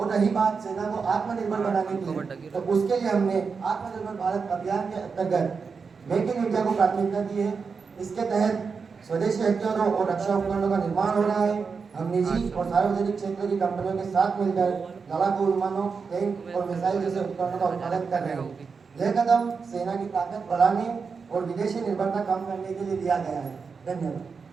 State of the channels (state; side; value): quieter; left; 5.3 dB